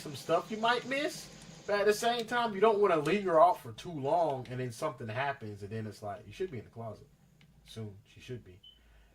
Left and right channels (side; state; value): both; identical; correlation 1.00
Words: stuff you might miss. But at the same time, you don't want to linger off for too long and then something happens and then it's like, you should be in the closet. Soon, she should be.